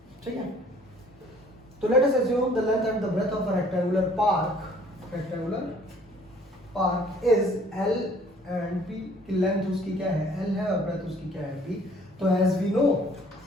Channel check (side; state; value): both; normal; correlation 0.57